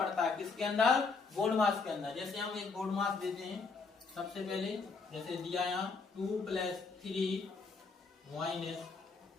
है। किसके अंदर? बोर्ड मास के अंदर। जैसे हम एक बोर्ड मास देते हैं, सबसे पहले जैसे दिया यहाँ 2 + 3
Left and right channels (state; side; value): quieter; right; 4.5 dB